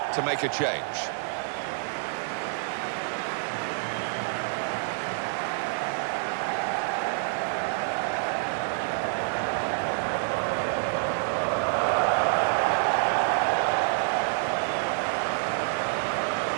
to make a change.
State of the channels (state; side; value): silent; left; digital silence